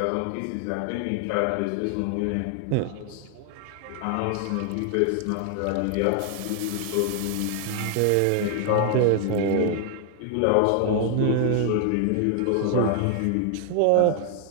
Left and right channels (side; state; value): both; different; correlation 0.00